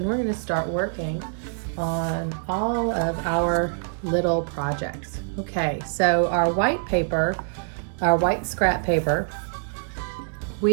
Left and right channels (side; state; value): left; silent; digital silence